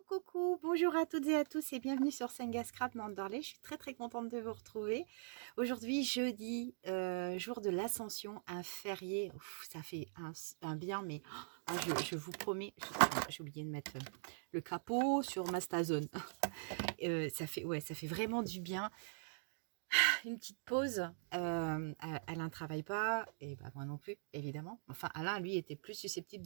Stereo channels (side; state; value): left; silent; digital silence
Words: coucou, bonjour à toutes et à tous et bienvenue sur Senga Scrap Mandarley. Je suis très contente de vous retrouver. Aujourd'hui, jeudi, jour de l'Ascension, un férié. Ouf, ça fait un bien, mais je vous promets, j'ai oublié de mettre le capot sur ma Stazone. Ça fait vraiment du bien. Une petite pause. Alain ne travaille pas, et bah, moi non plus, évidemment. Enfin, Alain, lui, était plus